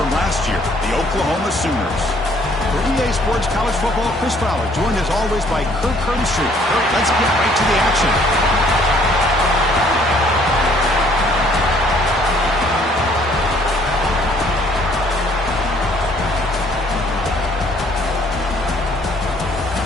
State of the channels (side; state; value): both; normal; correlation 0.61